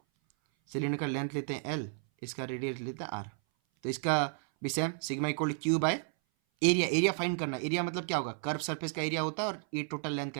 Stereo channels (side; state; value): left; silent; 56 dB below the other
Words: सिलेंडर का लेंथ लेते हैं एल, इसका रेडियस लेते हैं आर। तो इसका भी same, sigma equal Q by area. Area find करना। एरिया मतलब क्या होगा? कर्व सरफेस का एरिया होता है और ये टोटल लेंथ